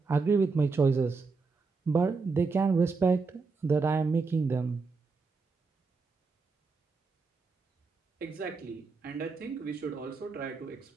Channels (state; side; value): quieter; left; 4.4 dB